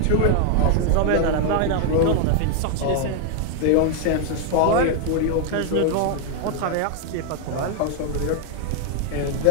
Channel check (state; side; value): different; both; correlation 0.00